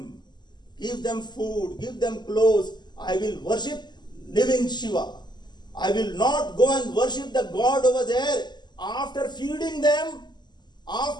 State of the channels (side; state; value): right; late; 0.21 ms